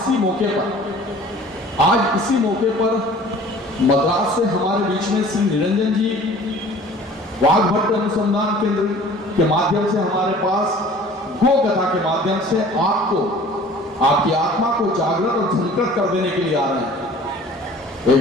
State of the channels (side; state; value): both; normal; correlation 0.48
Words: मौके पर मद्रास से हमारे बीच में श्री निरंजन जी वाघभट्ट अनुसंधान केंद्र के माध्यम से हमारे पास गो कथा के माध्यम से आपको आपकी आत्मा को जागृत और झंकृत कर देने के लिए आ रहे हैं।